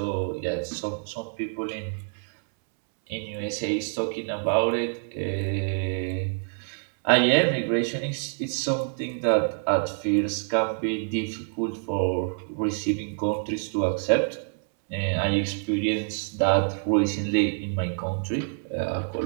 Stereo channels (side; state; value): left; silent; 60 dB below the other